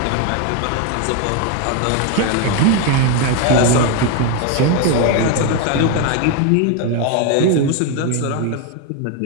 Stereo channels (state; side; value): different; both; correlation 0.01